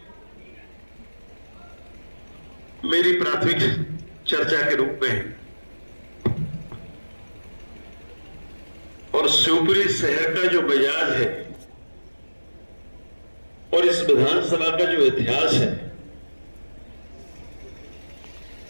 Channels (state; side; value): inverted; both; correlation -1.00